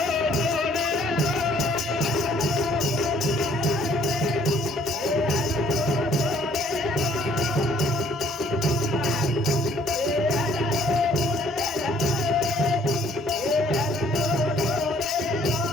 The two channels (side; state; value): both; normal; correlation 0.61